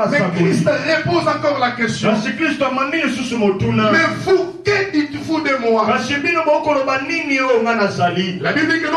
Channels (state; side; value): identical; both; correlation 1.00